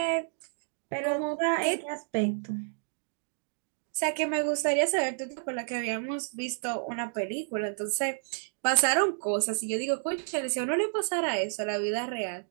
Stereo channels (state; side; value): silent; left; digital silence